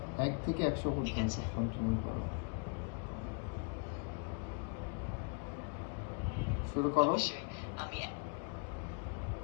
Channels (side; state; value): right; quieter; 37.7 dB